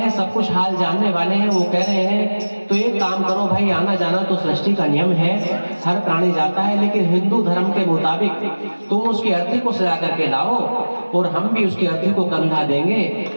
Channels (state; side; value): inverted; both; correlation -1.00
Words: सब कुछ हाल जानने वाले हैं। वो कह रहे हैं, तो एक काम करो भाई, आना जाना तो सृष्टि का नियम है, हर प्राणी जाता है, लेकिन हिंदू धर्म के मुताबिक तुम उसकी अर्थी को सजा करके लाओ, और हम भी उसकी अर्थी को कंधा देंगे